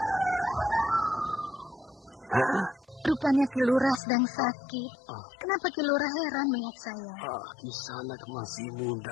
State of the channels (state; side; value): drops out; right; at 4.0 s